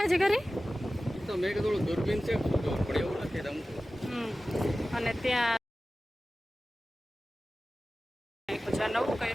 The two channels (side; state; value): both; normal; correlation 0.96